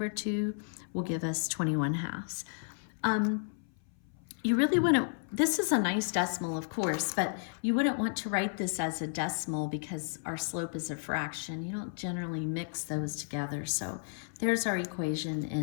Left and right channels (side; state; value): right; silent; 56 dB below the other